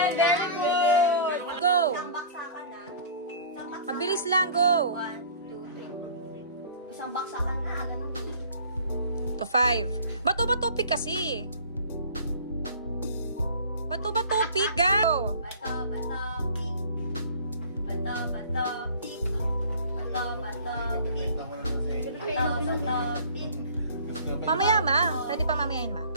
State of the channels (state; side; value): inverted; both; correlation -0.45